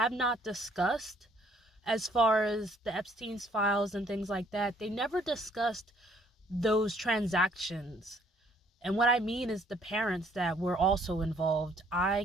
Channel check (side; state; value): both; normal; correlation 0.63